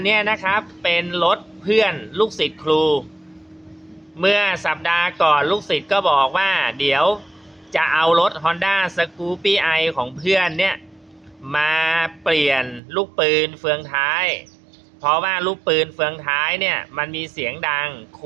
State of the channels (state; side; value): drops out; left; at 12.8 s